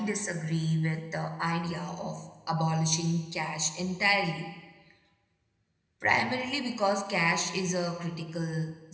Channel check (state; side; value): identical; both; correlation 1.00